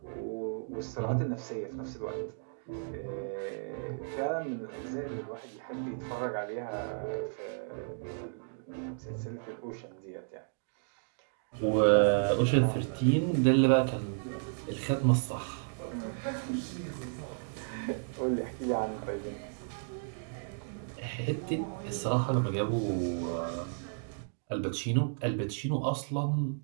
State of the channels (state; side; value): silent; left; digital silence